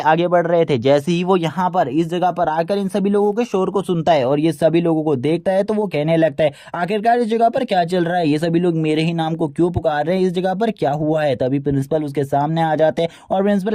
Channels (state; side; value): identical; both; correlation 1.00